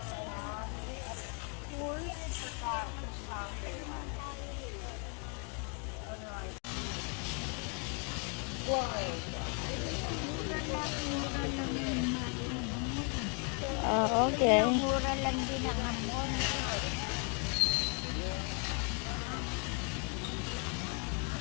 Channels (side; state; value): right; quieter; 36.3 dB